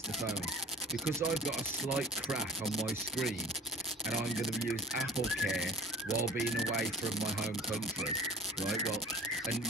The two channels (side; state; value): both; normal; correlation 0.40